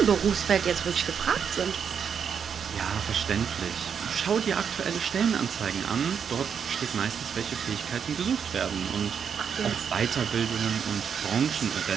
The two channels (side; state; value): left; quieter; 7.3 dB